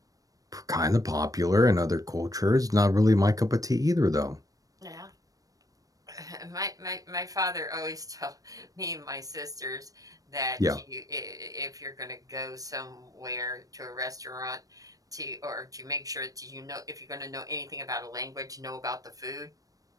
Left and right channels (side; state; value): left; late; 0.17 ms